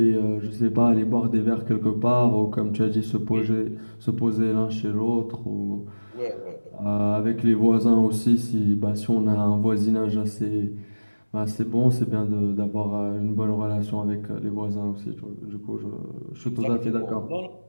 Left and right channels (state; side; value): inverted; both; correlation -1.00